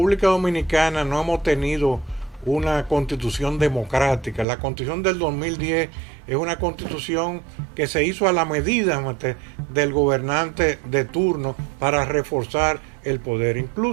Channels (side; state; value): left; drops out; at 4.5 s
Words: Dominicana no hemos tenido una constitución democrática. La constitución del 2010 es una constitución que se hizo a la medida del gobernante de turno para reforzar el poder.